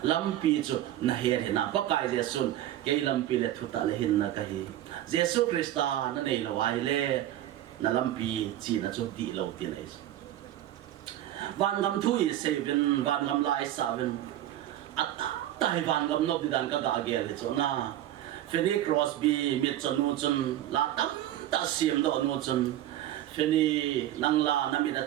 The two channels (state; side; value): quieter; left; 13.0 dB